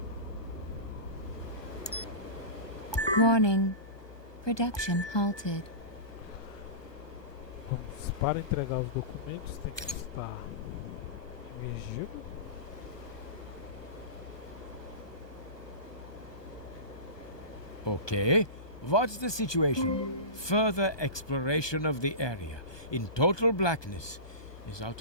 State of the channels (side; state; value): right; late; 1.2 ms